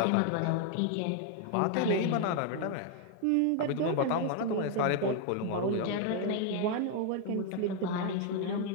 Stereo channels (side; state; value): both; different; correlation 0.00